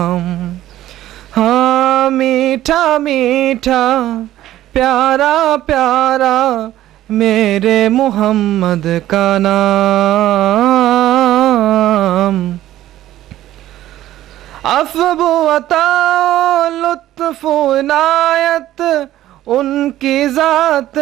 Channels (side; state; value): left; quieter; 13.8 dB